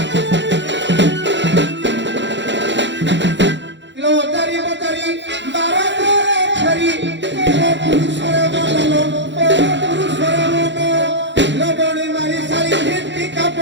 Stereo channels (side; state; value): left; late; 0.52 ms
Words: लबड़ी मारी सारी हिंदी का